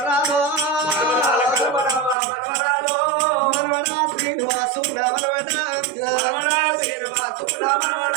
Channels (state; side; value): drops out; left; at 2.1 s